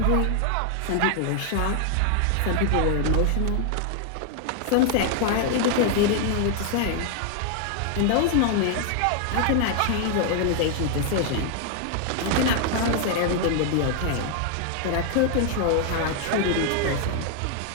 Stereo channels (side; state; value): both; different; correlation 0.00